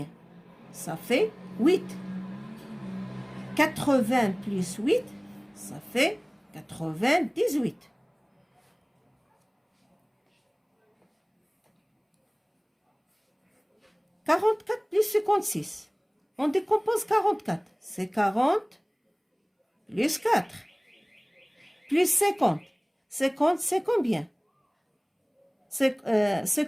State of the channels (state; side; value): identical; both; correlation 1.00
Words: Ça fait 8. 80 plus 8, ça fait 98. « 44 plus 56. On décompose 44. C'est 40 plus 4. Plus 50. 50, c'est combien?